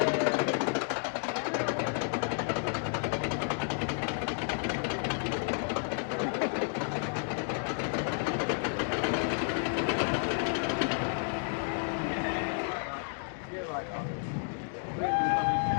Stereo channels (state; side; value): silent; right; 56 dB below the other